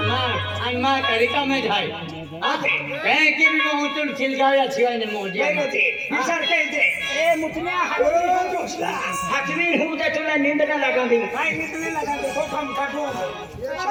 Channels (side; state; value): both; identical; correlation 1.00